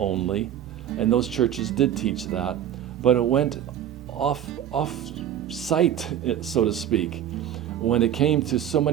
And those churches did teach that, but it went off sight, so to speak, when it came to so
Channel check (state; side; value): quieter; left; 10.5 dB